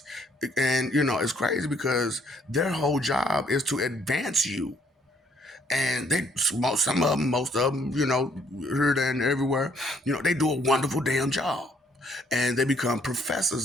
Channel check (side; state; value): both; normal; correlation 0.66